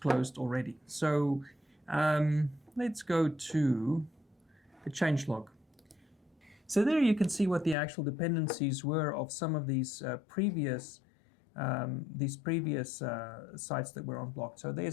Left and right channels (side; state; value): right; drops out; at 7.8 s